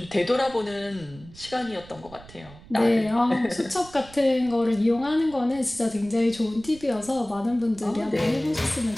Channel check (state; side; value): noise; right; rumble, 20 dB below the sound